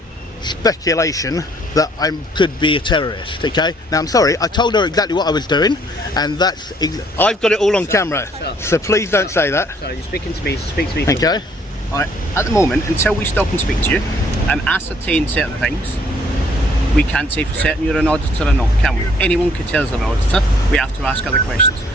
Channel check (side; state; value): both; normal; correlation 0.62